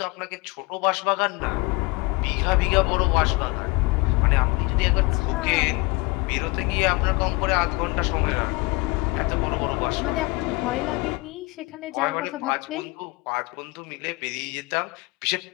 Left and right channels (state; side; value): quieter; right; 24.6 dB